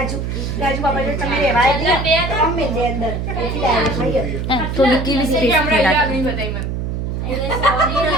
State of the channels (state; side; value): noise; right; hum, 3 dB below the sound